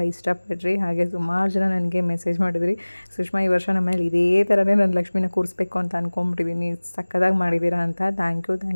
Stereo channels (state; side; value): inverted; both; correlation -1.00